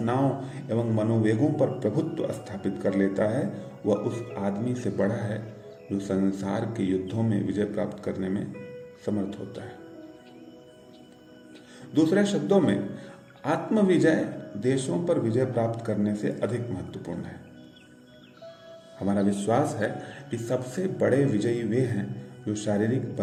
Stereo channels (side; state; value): both; identical; correlation 1.00